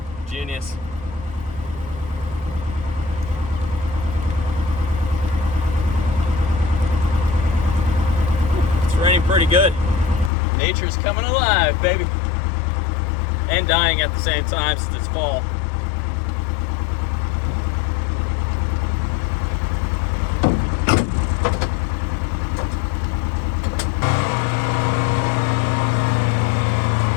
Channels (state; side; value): drops out; right; at 10.3 s